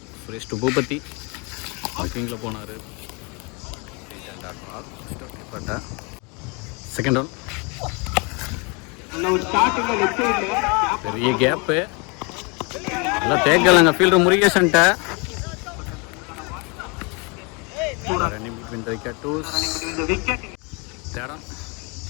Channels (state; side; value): quieter; right; 31.2 dB